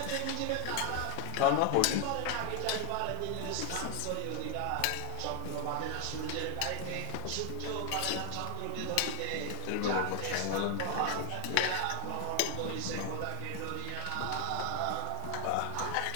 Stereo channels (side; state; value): both; different; correlation 0.00